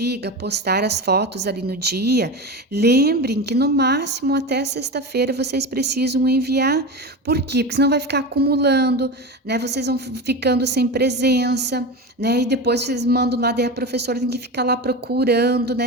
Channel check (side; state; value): both; normal; correlation 0.24